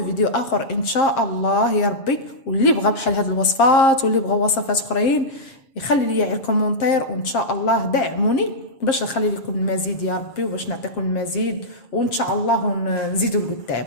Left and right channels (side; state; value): right; late; 7.5 ms